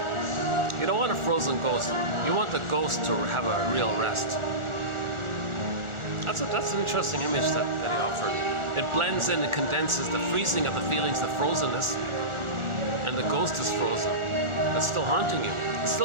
You don't want a frozen ghost. You want the ghost to have a real rest. That's an interesting image that he offered. It blends in and condenses the freezing of the feelings, the frozenness, and the ghost is frozen. It's still haunting you. It's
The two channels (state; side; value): late; left; 1.4 ms